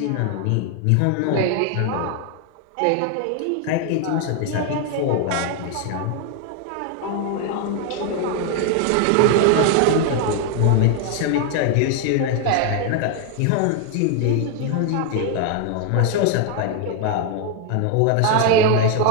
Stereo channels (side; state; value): both; different; correlation 0.01